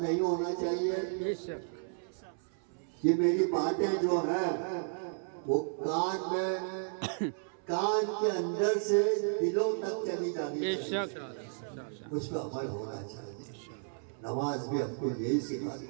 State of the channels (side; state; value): left; silent; 56 dB below the other